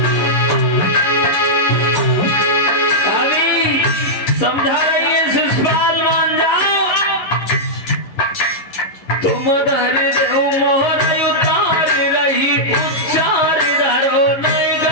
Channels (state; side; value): late; right; 11 ms